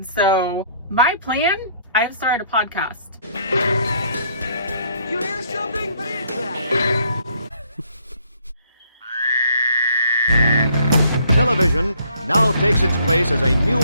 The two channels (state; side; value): inverted; both; correlation -0.64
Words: my plan, I've started a podcast. You hear something? What is that? Television now takes its place as a new